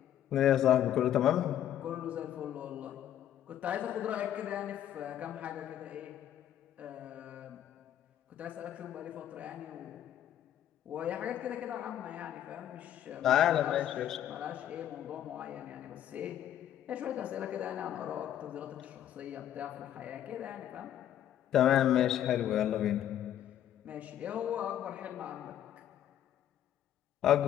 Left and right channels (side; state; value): right; quieter; 11.1 dB